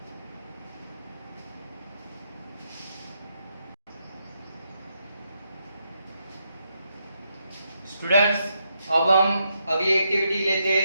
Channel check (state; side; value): inverted; both; correlation -0.80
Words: स्टूडेंट्स, अब हम अगली एक्टिविटी लेते